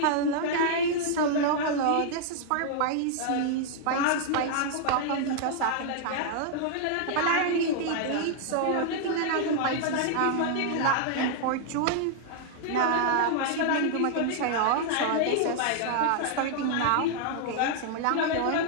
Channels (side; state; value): both; different; correlation -0.01